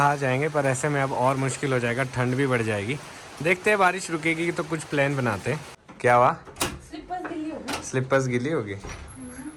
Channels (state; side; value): identical; both; correlation 1.00